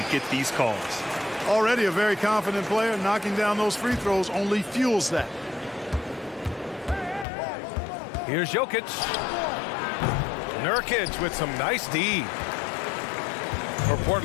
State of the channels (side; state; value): right; drops out; at 7.2 s